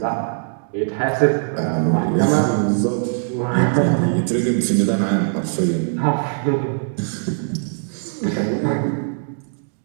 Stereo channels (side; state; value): left; silent; digital silence